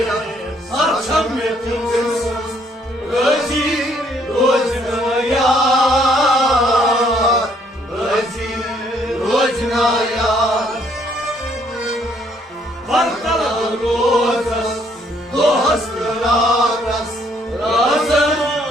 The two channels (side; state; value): both; normal; correlation 0.67